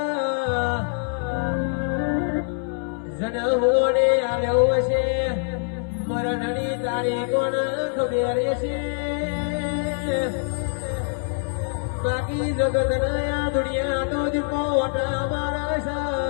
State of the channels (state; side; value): silent; right; 62 dB below the other